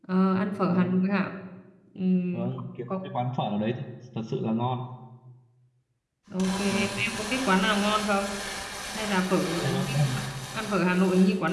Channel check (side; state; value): both; identical; correlation 1.00